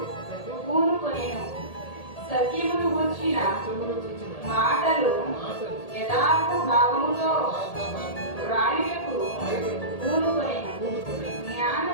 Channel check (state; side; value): late; right; 1.8 ms